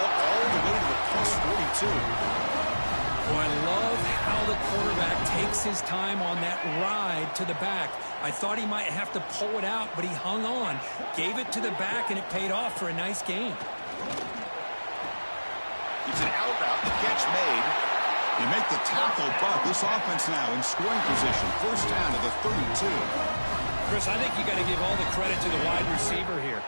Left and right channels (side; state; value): both; inverted; correlation -1.00